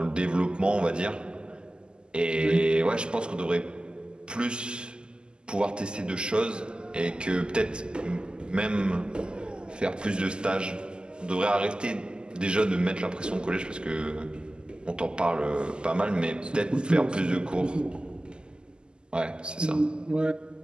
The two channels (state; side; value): late; left; 0.048 ms